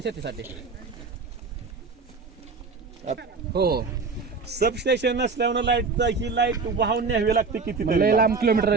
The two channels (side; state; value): left; quieter; 4.5 dB